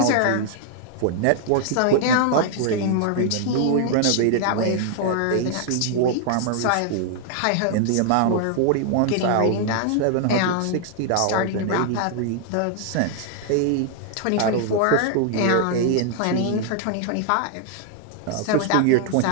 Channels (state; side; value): different; both; correlation 0.00